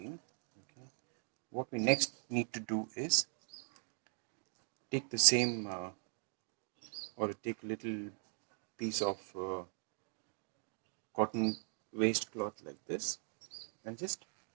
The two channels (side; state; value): left; silent; 51 dB below the other